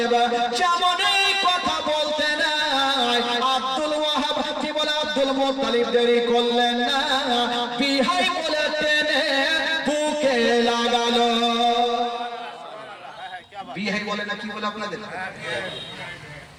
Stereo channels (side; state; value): both; identical; correlation 1.00